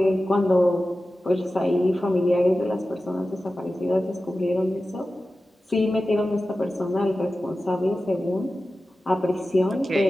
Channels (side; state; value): both; normal; correlation 0.94